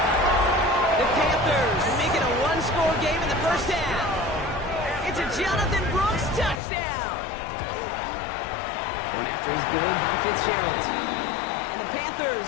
The Panthers make it a 1-score game in the first half. It's a Jonathan Brooks touchdown. Pressure is good by Fitzgerald. And the Panthers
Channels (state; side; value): drops out; right; at 6.6 s